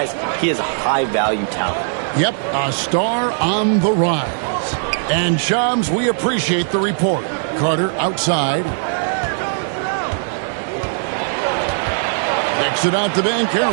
he is a high-value talent. Yep, a star on the rise. And Shams, we appreciate the report. Carter outside. Kicks it out to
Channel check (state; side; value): silent; left; digital silence